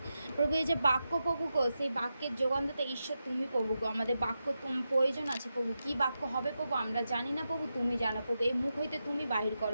প্রভু এই যে বাক্য প্রভু গো, সেই বাক্যের যোগানদাতা ঈশ্বর তুমি প্রভু গো। আমাদের বাক্য প্রয়োজন আছে প্রভু, কি বাক্য হবে প্রভু আমরা জানি না প্রভু, তুমি জানো প্রভু। এই মুখ হইতে তুমি বাহির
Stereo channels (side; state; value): both; inverted; correlation -0.89